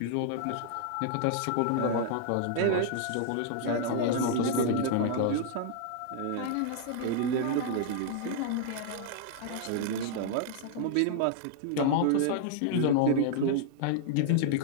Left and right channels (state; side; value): different; both; correlation -0.01